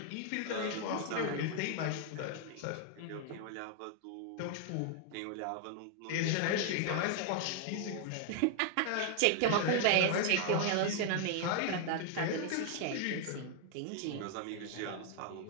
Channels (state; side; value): different; both; correlation 0.00